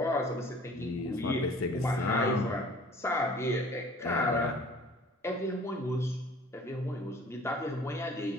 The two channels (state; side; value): normal; both; correlation 0.49